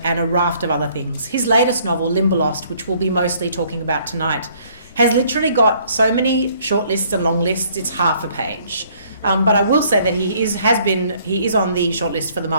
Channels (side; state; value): both; inverted; correlation -0.62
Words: and a raft of other things. His latest novel, Limberlost, which we'll be mostly talking about tonight, has literally got so many shortlists and long lists, it's half a page. But I will say that he is on the shortlist for the